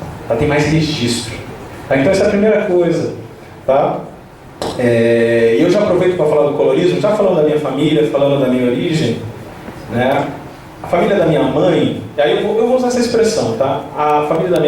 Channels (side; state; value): both; identical; correlation 1.00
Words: Tá? Tem mais registro. Tá? Então essa é a primeira coisa. Tá? Eu já aproveito para falar do colorismo, já falando da minha família, falando da minha origem. Né? A família da minha mãe, e aí eu vou usar essa expressão, tá? A família da